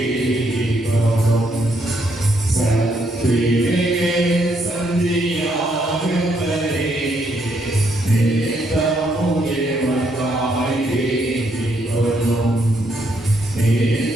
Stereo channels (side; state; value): both; normal; correlation 0.74